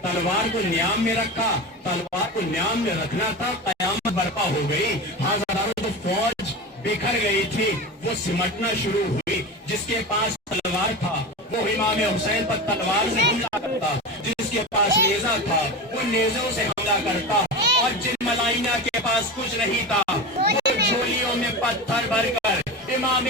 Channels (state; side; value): normal; both; correlation 0.26